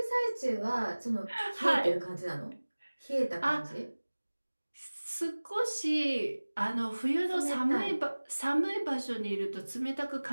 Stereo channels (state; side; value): inverted; both; correlation -1.00